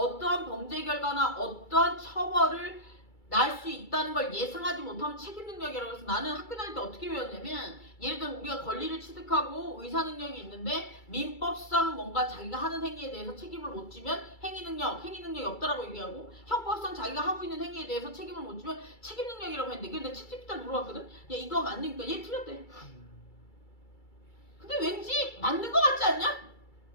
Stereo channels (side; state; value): right; late; 2.3 ms